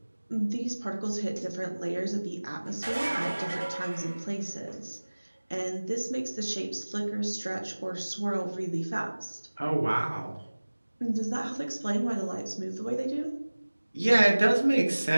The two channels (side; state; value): both; inverted; correlation -1.00